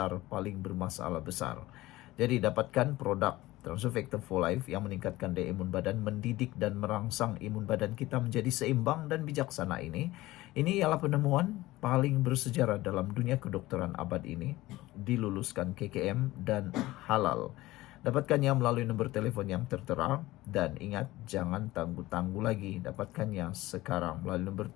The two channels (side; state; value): right; quieter; 17.9 dB